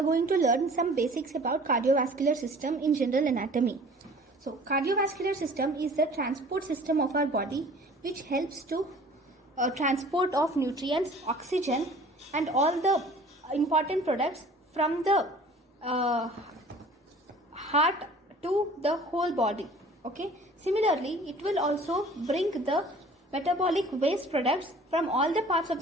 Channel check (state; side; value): normal; both; correlation 0.48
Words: going to learn some basics about cardiovascular system in general anatomy. So cardiovascular system is the transport system of our body which helps to transport of nutrients, oxygen and all the important products from the heart to the whole body. Okay. Similarly, it will also bring the metabolic waste products from all the parts of